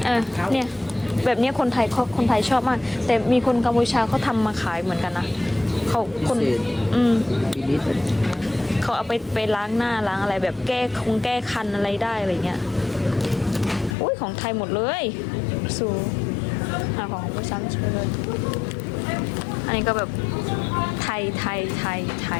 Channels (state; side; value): drops out; right; at 14.0 s